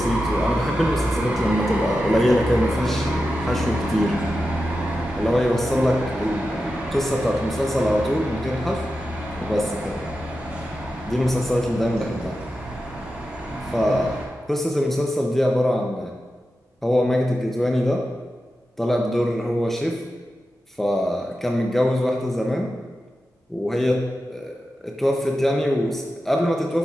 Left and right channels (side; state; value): both; normal; correlation 0.91